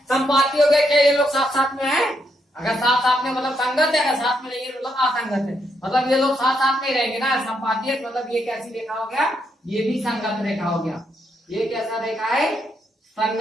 संपाती हो गया क्या, ये लोग साथ साथ में है, अगर साथ साथ में मतलब संगत है, अगर साथ में नहीं है मतलब असंगत है, मतलब ये लोग साथ साथ में रहेंगे ना। संपाती है मतलब ये कैसी रेखा हो गया, ये भी संगत रेखा हो गया। ये कैसा रेखा है,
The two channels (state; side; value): normal; both; correlation 0.78